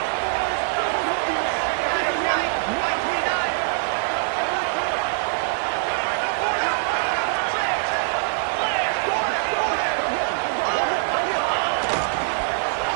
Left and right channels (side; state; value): left; silent; 63 dB below the other